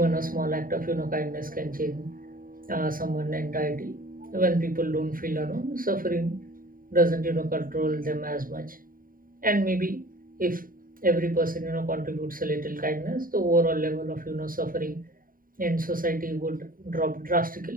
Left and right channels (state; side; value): late; left; 0.41 ms